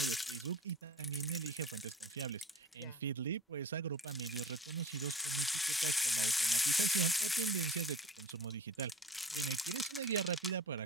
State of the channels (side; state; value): both; normal; correlation 0.38